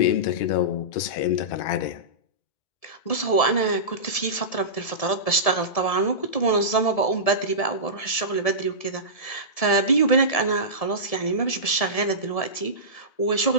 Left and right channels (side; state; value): right; late; 1.7 ms